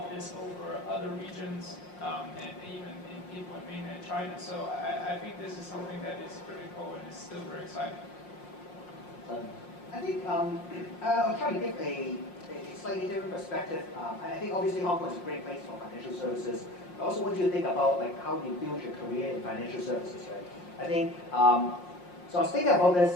this over other regions, and even in people in mainland China. So I think this is something that is critical and is still very exciting. I think I'll try to give a slightly different perspective. I think obviously Hong Kong is a great place for financial services. I also want you to think about how you build your career in financial services, right? I think, so I was thinking about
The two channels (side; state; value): right; late; 5.6 ms